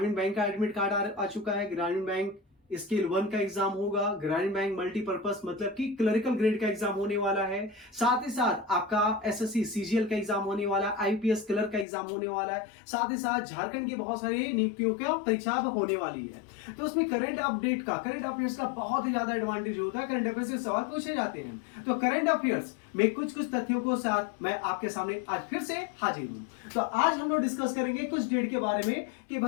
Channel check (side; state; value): right; drops out; at 11.9 s